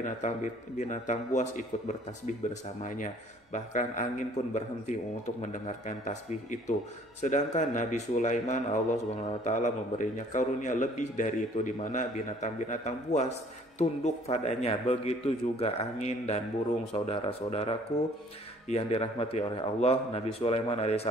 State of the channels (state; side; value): normal; both; correlation 0.56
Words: buas ikut bertasbih bersamanya. Bahkan angin pun berhenti untuk mendengarkan tasbih itu. Sedangkan Nabi Sulaiman, Allah Subhanahu wa taala memberinya karunia lebih dari itu, di mana binatang-binatang buas tunduk padanya. Begitu juga angin dan burung. Saudara-saudaraku yang dirahmati oleh Allah, Nabi Sulaiman